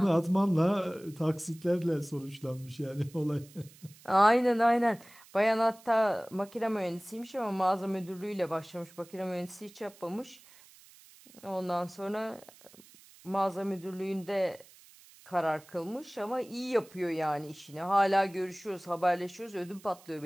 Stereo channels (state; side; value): noise; right; hiss, 24 dB below the sound